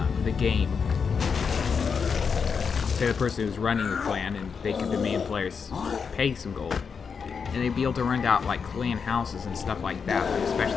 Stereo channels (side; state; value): right; quieter; 5.9 dB